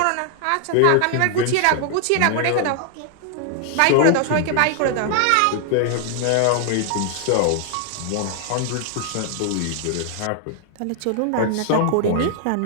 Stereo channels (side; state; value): both; different; correlation 0.00